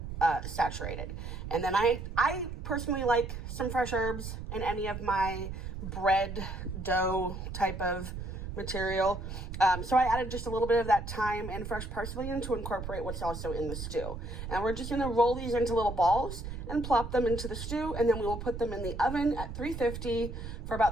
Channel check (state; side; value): noise; right; rumble, 7 dB below the sound